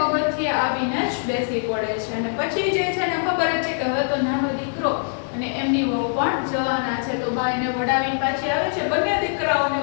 આવીને જ બેસી પડે છે. અને પછી જે છે ને ખબર જ છે કે હવે તો નાનો દીકરો અને એમની વહુ પણ જવાના છે, તો બા એને વડાવીને પાછી આવે છે, બંને દીકરાઓને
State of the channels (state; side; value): silent; right; digital silence